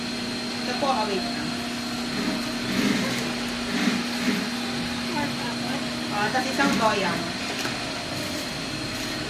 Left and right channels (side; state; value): both; identical; correlation 1.00